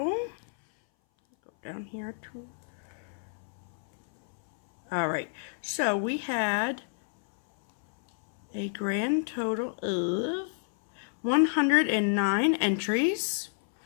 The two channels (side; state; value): right; silent; 58 dB below the other